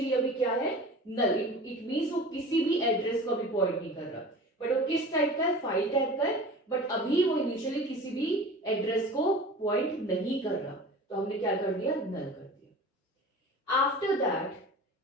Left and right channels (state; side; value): normal; both; correlation 0.38